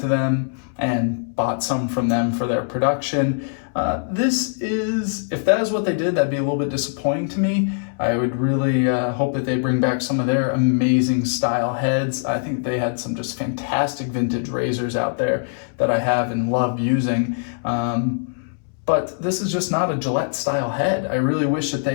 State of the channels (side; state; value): right; silent; 64 dB below the other